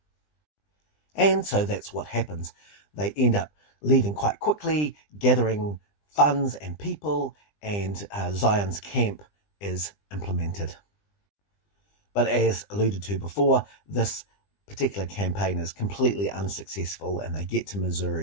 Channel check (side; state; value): right; late; 20 ms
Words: And so that's what happens. They end up leaving quite quickly, gathering funds and people, and Zion's camp is implemented. But as alluded to before, this particular campaign is completely unsuccessful, and they get to